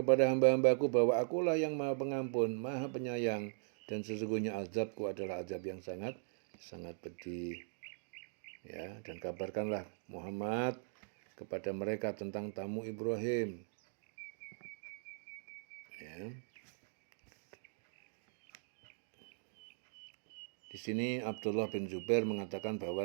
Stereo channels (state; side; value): silent; left; digital silence